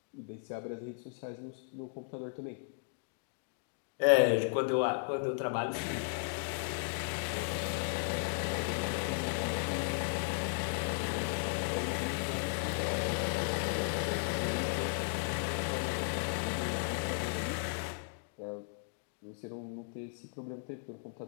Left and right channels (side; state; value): right; silent; digital silence